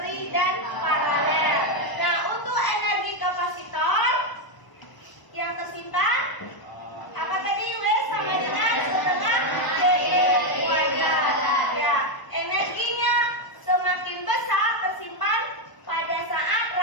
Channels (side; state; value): right; late; 1.0 ms